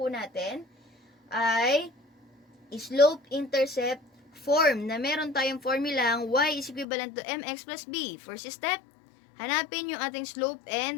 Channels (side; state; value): right; drops out; at 6.9 s